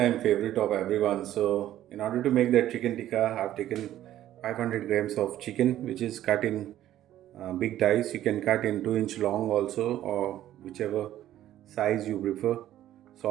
favorite of everyone. So, in order to make that chicken tikka, I've taken 500 grams of chicken, which is cut in big dice. You can cut in 2-inch long also, or whichever size you prefer.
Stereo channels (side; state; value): left; quieter; 12.8 dB